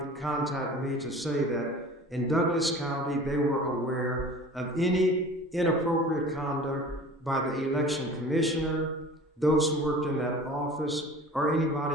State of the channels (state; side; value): normal; both; correlation 0.42